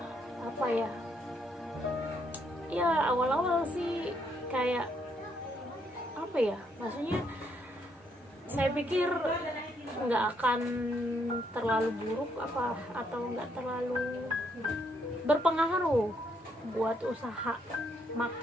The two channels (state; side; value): normal; both; correlation 0.73